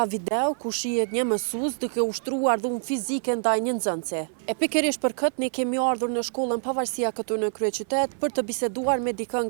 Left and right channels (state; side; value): silent; left; 56 dB below the other